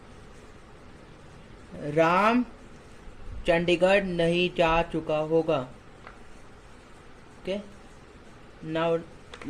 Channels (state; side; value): identical; both; correlation 1.00